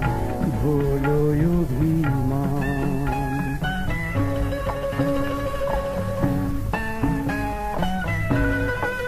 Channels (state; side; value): identical; both; correlation 1.00